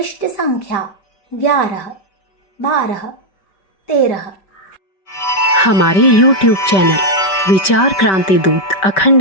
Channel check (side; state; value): right; late; 5.2 ms